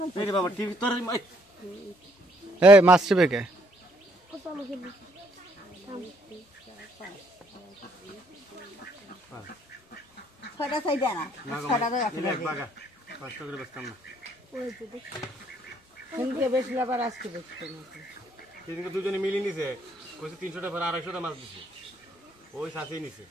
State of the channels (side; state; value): both; normal; correlation 0.67